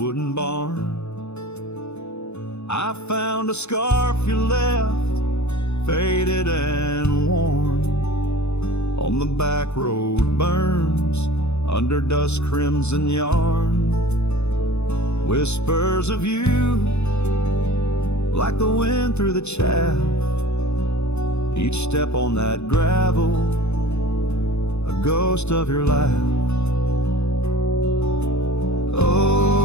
barn, I found a scarf you left, faded and worn. On the back road burns under dust crimson yarn, whispers of you like the wind through the chaff. Each step on that gravel, a ghost of your laugh.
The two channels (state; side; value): late; right; 0.81 ms